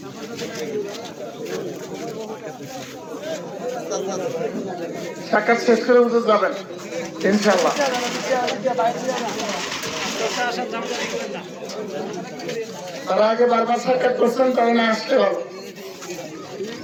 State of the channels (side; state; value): both; identical; correlation 1.00